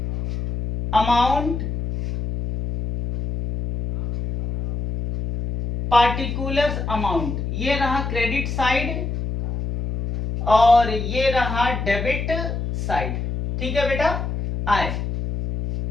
अमाउंट, पार्टिकुलर्स अमाउंट, ये रहा क्रेडिट साइड और ये रहा डेबिट साइड। ठीक है बेटा। आए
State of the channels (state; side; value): noise; left; hum, 4 dB below the sound